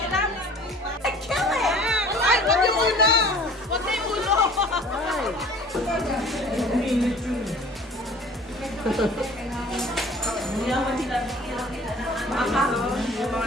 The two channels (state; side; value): normal; both; correlation 0.47